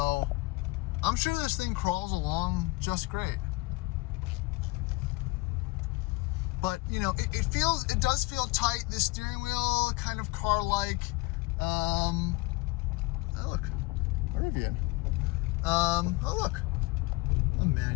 I'm sure this thing crawls along just great. But you know, it does feel tight. The steering wheel kind of car-like. Oh look, Rivian. Oh look, a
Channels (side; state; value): right; quieter; 22.6 dB